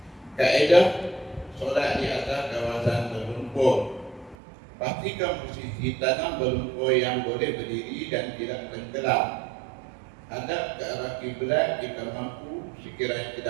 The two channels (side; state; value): left; drops out; at 4.4 s